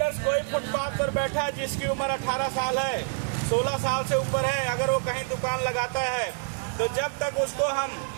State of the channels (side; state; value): left; silent; digital silence